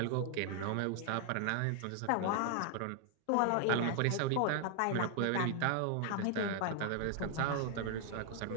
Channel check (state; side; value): different; both; correlation 0.00